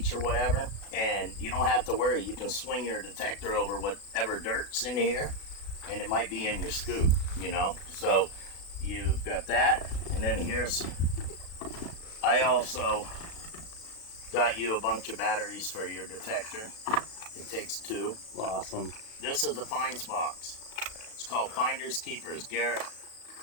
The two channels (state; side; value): late; right; 36 ms